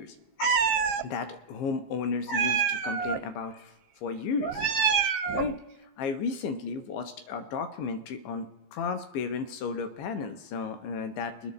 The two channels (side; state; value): right; late; 15 ms